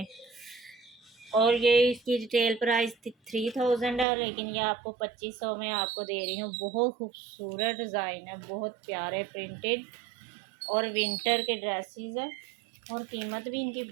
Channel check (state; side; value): drops out; left; at 4.0 s